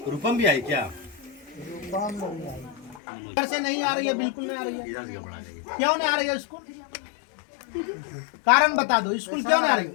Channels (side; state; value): right; drops out; at 3.0 s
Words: रूपम भी आई क्या? रूपम नहीं आई घर से नहीं आ रही है बिल्कुल नहीं आ रही है इधर से पढ़ा जाएगी। क्यों नहीं आ रही है स्कूल कारण बता दो स्कूल क्यों नहीं आ